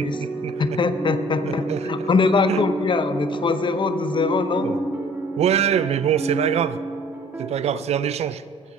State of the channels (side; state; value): both; normal; correlation 0.53